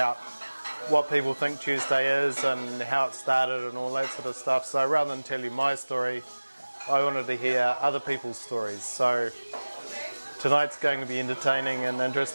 what people think Tuesday is and how it started and all that sort of stuff. So rather than tell you my story, I wanted to hear other people's stories. So tonight's going to be entertaining and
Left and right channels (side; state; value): both; inverted; correlation -1.00